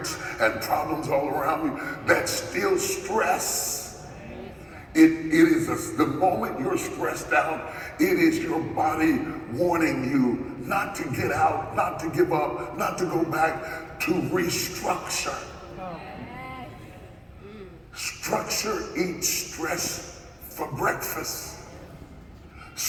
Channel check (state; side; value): identical; both; correlation 1.00